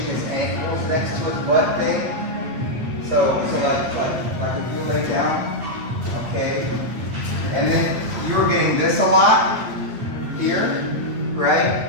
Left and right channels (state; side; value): late; left; 8.6 ms